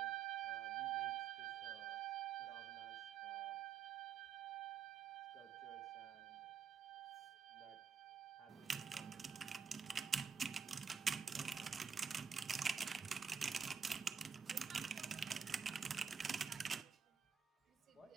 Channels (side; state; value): left; quieter; 6.5 dB